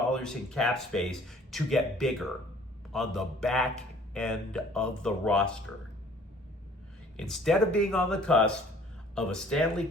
in cap space to get bigger on the back end of the roster. Instead of being on the cusp of a Stanley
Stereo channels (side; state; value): both; normal; correlation 0.54